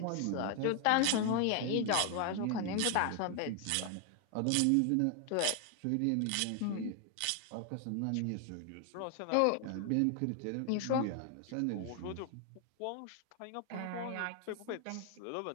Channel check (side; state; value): both; different; correlation 0.00